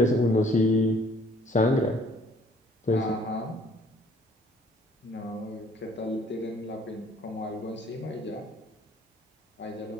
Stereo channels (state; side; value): normal; both; correlation 0.59